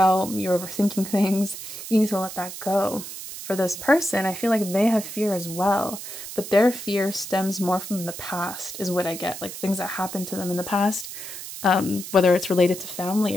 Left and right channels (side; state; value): right; noise; hiss, 10 dB below the sound